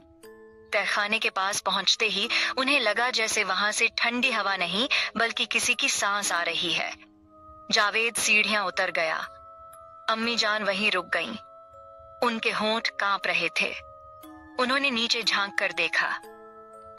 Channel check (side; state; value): both; identical; correlation 1.00